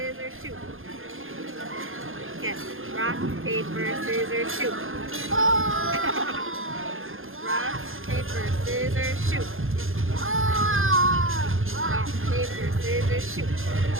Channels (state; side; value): late; left; 0.60 ms